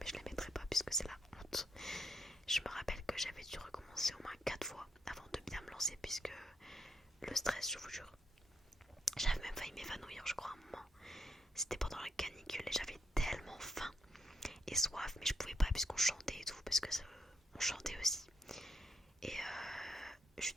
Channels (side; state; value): both; normal; correlation 0.77